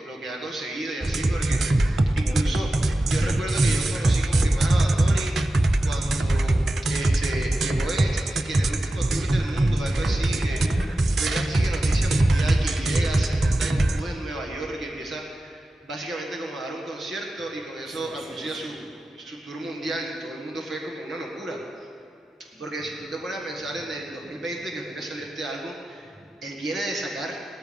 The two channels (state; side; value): normal; both; correlation 0.93